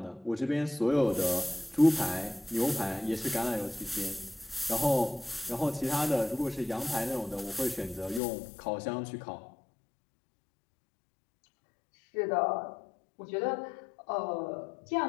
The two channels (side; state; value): right; drops out; at 8.2 s